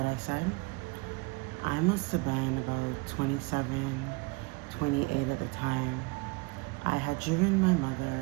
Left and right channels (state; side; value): quieter; left; 26.4 dB